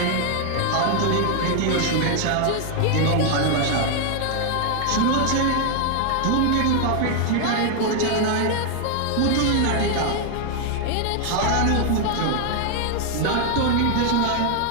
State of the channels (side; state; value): both; different; correlation 0.00